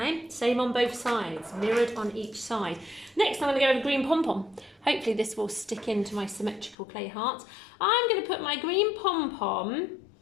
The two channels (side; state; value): right; drops out; at 6.8 s